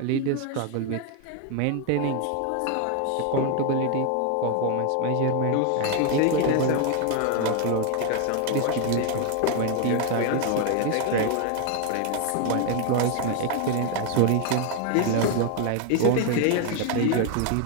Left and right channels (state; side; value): different; both; correlation 0.01